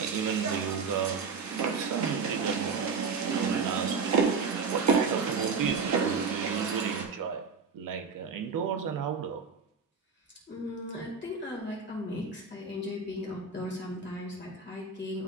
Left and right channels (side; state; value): left; quieter; 5.1 dB